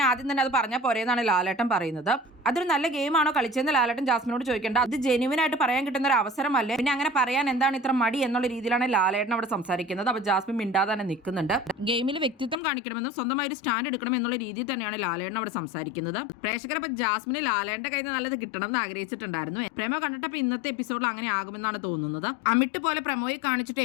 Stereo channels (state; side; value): drops out; right; at 12.6 s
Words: ആദ്യം തന്നെ അത് പറഞ്ഞാൽ പോരെന്നാണ് ലാലേട്ടൻ പറയുന്നത്. അതൊരു നല്ല ഗെയിമാണോ കളിച്ചതെന്ന് ലാലേട്ടൻ ജാസ്മിനോട് ചോദിക്കേണ്ട. അത് ജെന്യുവൻ ആയിട്ട് പറയാൻ കിട്ടുന്ന ഒരു അവസരമല്ലേ, പിന്നെ അങ്ങനെ പറയാൻ എന്താണ് ഇത്ര മടി എന്നുള്ള രീതിയിലാണ് ലാലേട്ടൻ അവിടെ സംസാരിക്കുന്നത്. അപ്പൊ ജാസ്മിൻ മിണ്ടാതെ തന്നെ നിൽക്കുന്നുണ്ട്. ഗെയിമിൽ വ്യക്തിത്വം കാണിക്കണമെന്നും സ്വന്തമായി ഒരു സ്റ്റാൻഡ് എടുക്കണം എന്നുള്ള രീതിയിൽ തന്നെയാണ് ലാലേട്ടൻ അവിടെ സംസാരിക്കുന്നത്. പ്രേക്ഷകർ അപ്പൊ ജാസ്മിന് ലാലേട്ടന്റെ കയ്യിൽ നിന്ന് നല്ലത് കിട്ടണം എന്ന് ആഗ്രഹിച്ചിട്ടുണ്ടായിരുന്നു. പ്രേമോ കണ്ടിട്ടപ്പോൾ ഇന്നത്തെ എപ്പിസോഡിൽ അങ്ങനെ ആകുമെന്നാണ് തോന്നുന്നത്. അമിട്ട് പോലെ പ്രമോയിൽ കാണിച്ചിട്ട്